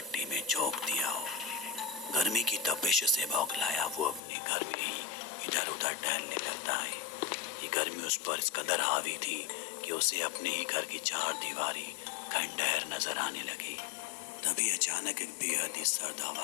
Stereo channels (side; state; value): right; drops out; at 4.2 s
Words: میں جھونک دیا ہو۔ گرمی کی تپش سے بوکھلایا وہ اپنے گھر میں ہی ادھر ادھر ٹہلنے لگتا ہے۔ یہ گرمی اس پر اس قدر حاوی تھی کہ اسے اپنے ہی گھر کی 4 دیواری کھنڈہر نظر آنے لگی۔ تبھی اچانک ایک بے حد ہی سرد